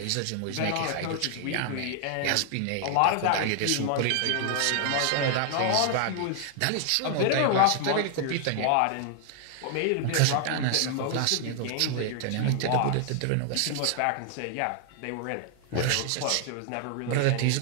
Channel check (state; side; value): different; both; correlation 0.00